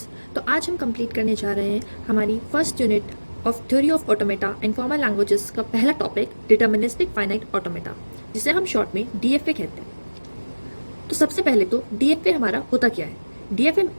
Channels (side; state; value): both; inverted; correlation -1.00